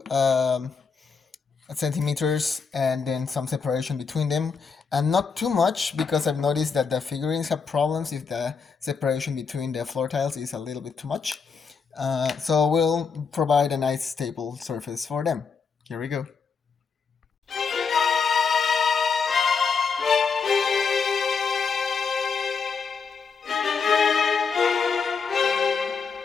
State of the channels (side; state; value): right; quieter; 5.5 dB